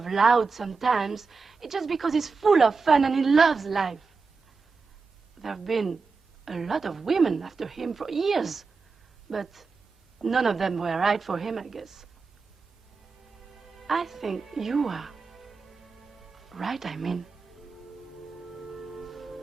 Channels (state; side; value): quieter; left; 4.6 dB